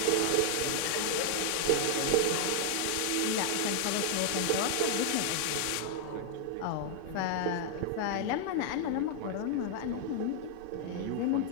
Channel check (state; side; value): different; both; correlation 0.00